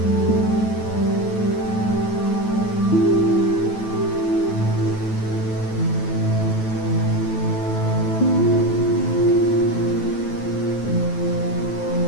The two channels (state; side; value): late; right; 9.3 ms